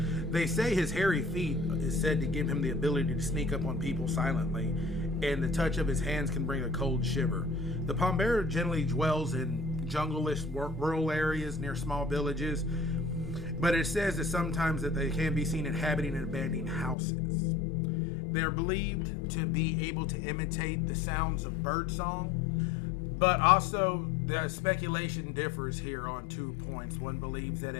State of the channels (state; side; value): drops out; right; at 16.9 s